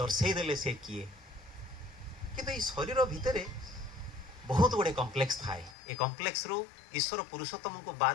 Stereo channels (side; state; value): right; drops out; at 5.8 s